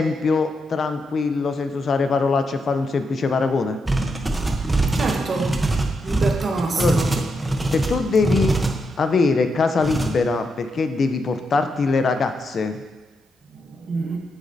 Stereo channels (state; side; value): normal; both; correlation 0.83